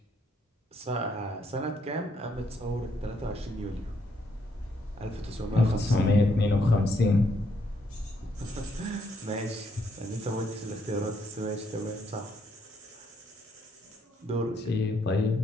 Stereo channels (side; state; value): both; normal; correlation 0.73